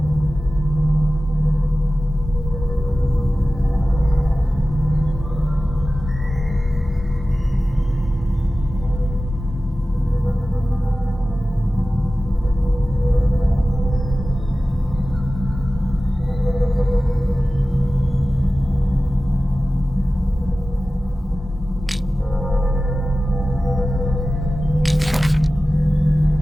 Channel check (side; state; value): both; normal; correlation 0.96